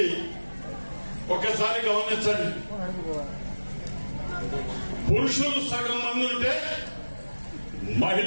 ఒకసారి గమనించండి. పురుషులు సగం మంది ఉంటే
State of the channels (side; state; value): both; inverted; correlation -1.00